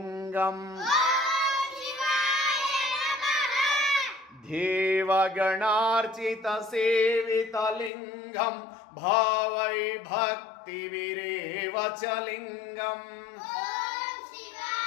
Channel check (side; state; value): right; drops out; at 7.9 s